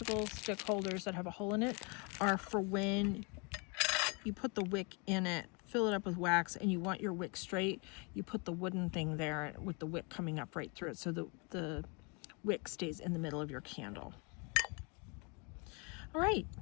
stick holders that have a hole in it are for when you put the wick in it, fill it up with wax, and you want your wick straight, you put the wooden thing there with the wick coming up right through it, so the wick stays in the middle of your candle. All right,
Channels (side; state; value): right; quieter; 32.8 dB